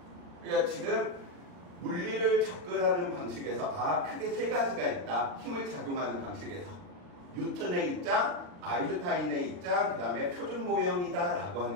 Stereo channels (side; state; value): left; late; 40 ms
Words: 그러니까 지금 물리를 접근하는 방식에서 크게 세 가지가 있다. 힘을 작용하는 방식에서 뉴턴의 입장, 아인슈타인의 입장, 그 다음에 표준 모형이다 라고